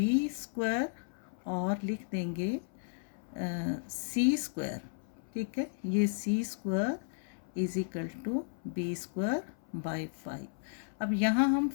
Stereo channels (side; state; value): right; silent; 55 dB below the other